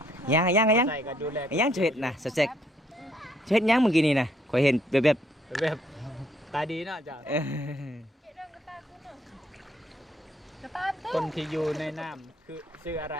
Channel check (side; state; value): both; normal; correlation 0.69